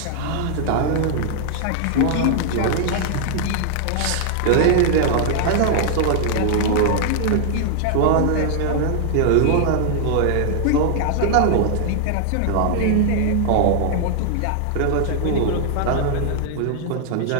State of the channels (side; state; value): both; different; correlation 0.00